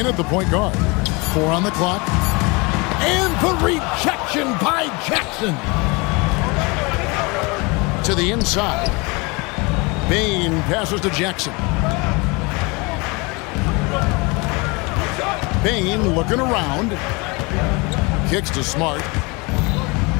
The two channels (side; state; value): right; quieter; 27.4 dB